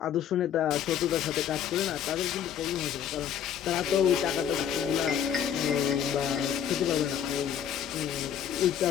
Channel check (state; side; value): quieter; right; 9.0 dB